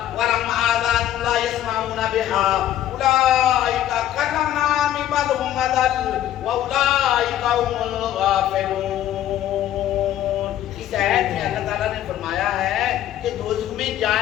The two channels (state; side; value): quieter; right; 12.1 dB